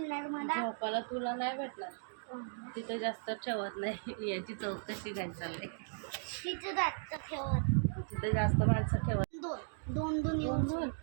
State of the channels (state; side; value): silent; left; digital silence